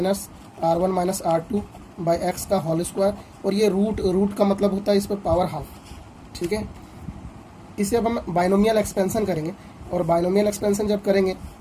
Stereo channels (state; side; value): identical; both; correlation 1.00